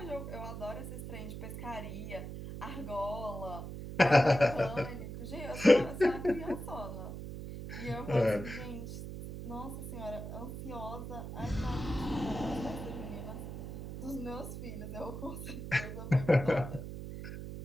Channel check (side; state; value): right; noise; hum, 8 dB below the sound